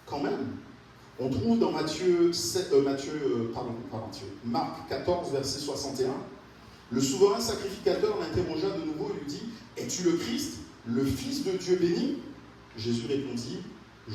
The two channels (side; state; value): both; identical; correlation 1.00